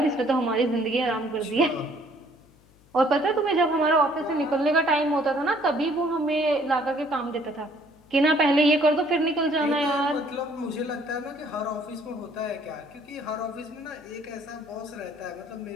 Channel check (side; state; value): left; noise; hum, 29 dB below the sound